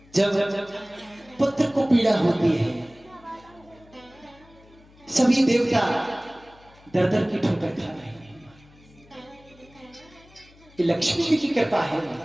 जब पुत्र को पीड़ा होती है, सभी देवता दर दर की ठोकर खा रहे हैं। ये लक्ष्मी जी की कृपा है।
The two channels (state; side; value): noise; left; hum, 26 dB below the sound